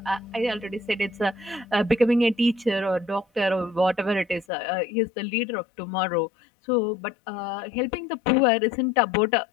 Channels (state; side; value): drops out; right; at 4.5 s